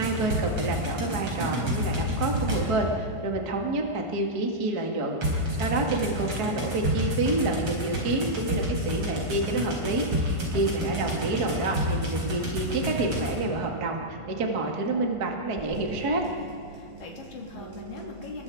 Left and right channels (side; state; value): left; late; 1.5 ms